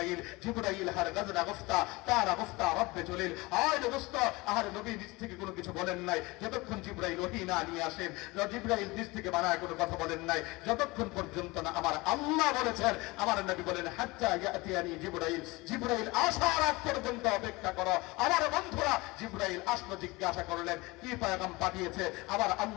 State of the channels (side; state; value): right; quieter; 22.9 dB